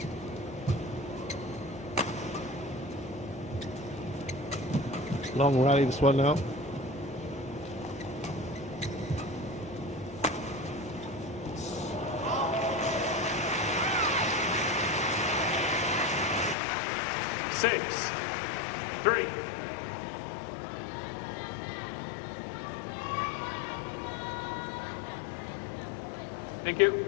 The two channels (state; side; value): drops out; right; at 16.6 s